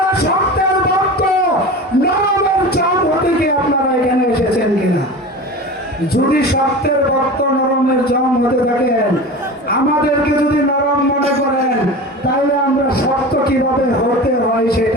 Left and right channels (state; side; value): normal; both; correlation 0.32